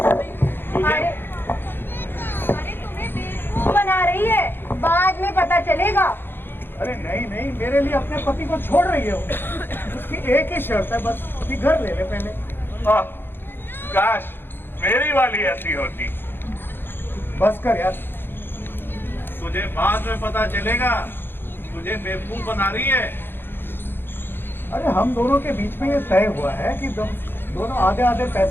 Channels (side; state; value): right; late; 0.10 ms